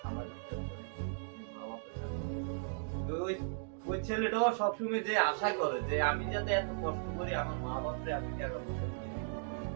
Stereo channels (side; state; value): left; silent; digital silence